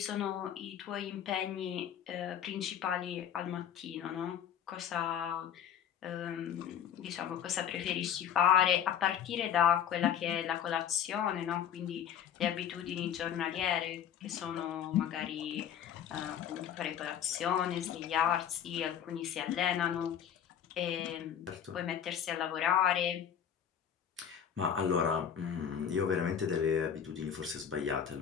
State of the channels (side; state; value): right; quieter; 9.0 dB